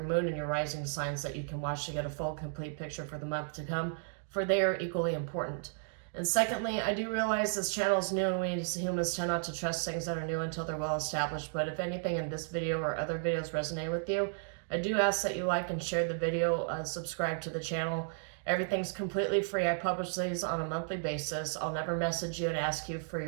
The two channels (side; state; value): left; silent; digital silence